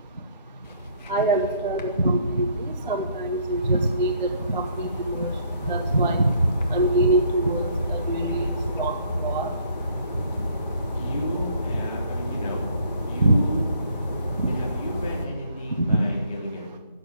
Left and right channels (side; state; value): both; inverted; correlation -0.63